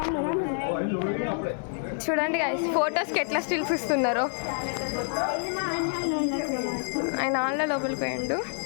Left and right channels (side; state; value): right; silent; digital silence